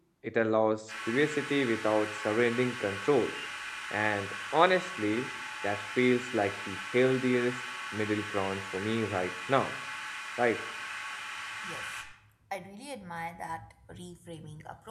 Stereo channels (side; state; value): both; identical; correlation 1.00